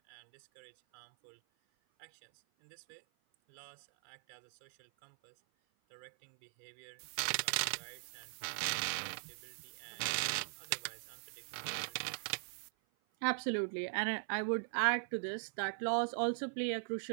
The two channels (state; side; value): silent; left; 51 dB below the other